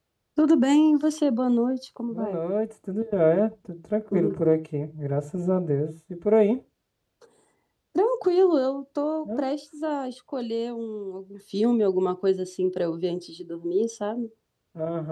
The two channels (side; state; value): both; identical; correlation 1.00